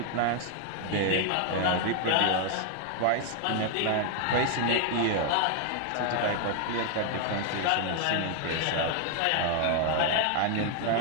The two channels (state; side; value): different; both; correlation 0.00